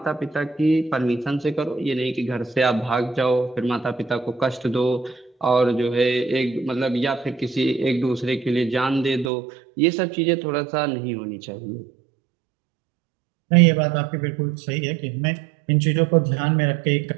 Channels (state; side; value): drops out; left; at 9.3 s